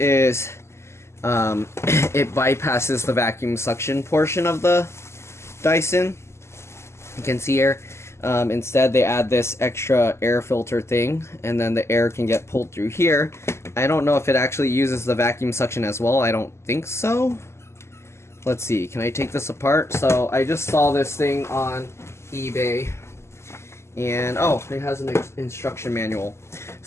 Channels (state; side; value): late; right; 0.13 ms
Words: it bypasses the vacuum suction portion of the Dyson. You can see here, instead they add this extra air filter thing, and then the air can get pulled through here. I don't know if it actually uses the vacuum suction as well. I don't think so. Let's see, can I take this apart? So I just saw this thing on eBay. And oh, it has an instruction manual.